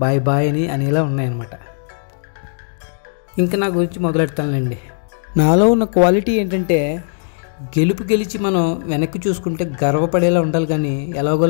బాయ్ బాయ్ అని అనేలా ఉన్నాయన్నమాట. ఇంకా నా గురించి మొదలెడతానులేండి. నాలో ఉన్న క్వాలిటీ ఏంటంటే గెలిచి మనం వెనక్కి చూసుకుంటే గర్వపడేలా ఉండాలి, కానీ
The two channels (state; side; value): silent; right; digital silence